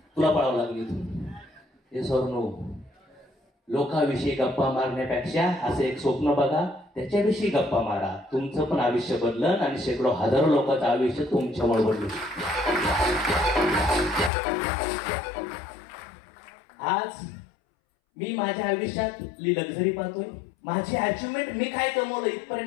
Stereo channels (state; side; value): drops out; right; at 14.3 s